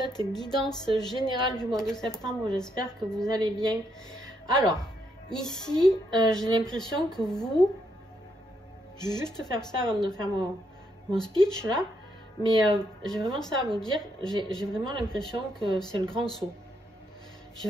guidance générale du mois de septembre. J'espère que vous allez bien. Alors, ici, j'ai l'impression que vous... Je vais juste faire ça avant de faire mon speech là. Mais j'ai vraiment ça à vous dire. J'ai vraiment l'impression que c'est le grand saut. J'ai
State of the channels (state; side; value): normal; both; correlation 0.76